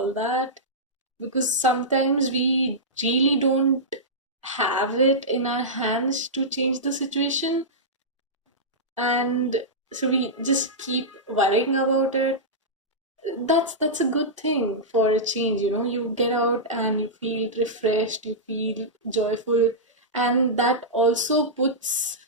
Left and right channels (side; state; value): both; normal; correlation -0.13